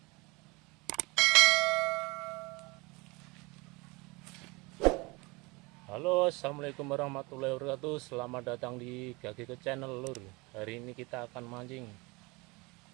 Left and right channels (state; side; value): quieter; left; 25.6 dB